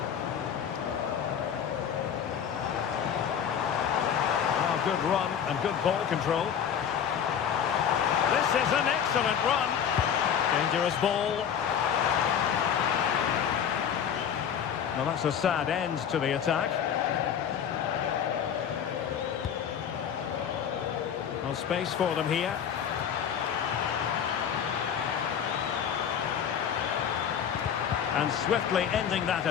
Oh, good run and good ball control. This is an excellent run. Dangerous ball. Now that's a sad end to the attack. No space for them here. And swiftly ending that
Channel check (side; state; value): right; quieter; 8.2 dB